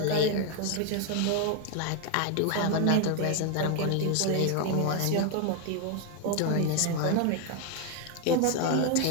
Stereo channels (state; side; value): different; both; correlation 0.01